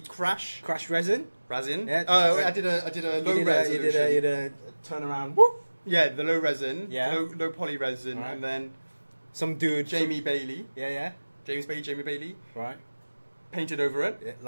crash resin. Yeah. Yeah. I did a low You resolution. did a turnaround. Whoop. Yeah, the low resin. Yeah. Low poly resin. Alright. And then Some dude. Jamie Bailey. Yeah. Jamie Bailey. Right. Painted over it. Yeah,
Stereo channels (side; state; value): both; inverted; correlation -1.00